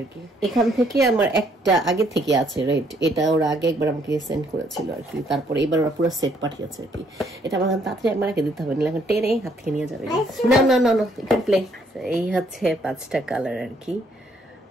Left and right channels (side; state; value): both; normal; correlation 0.68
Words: কি। এখান থেকে আমার একটা আগে থেকে আছে রেড, এটা ওরা আগে একবার আমাকে সেন্ড করেছিল আর কি। তারপরে এবার ওরা পুরো সেট পাঠিয়েছে আর কি। এটা আমার তাড়াতাড়ি একবার রেখে দিতে হবে, এখন টেনে হাত থেকে নিয়ে যাবে। না না না না, এখানে প্লে। এই হচ্ছে 5টা কালার আর কি,